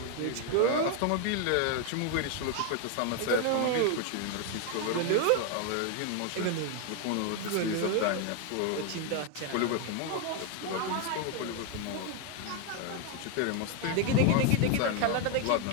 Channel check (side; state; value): both; different; correlation 0.01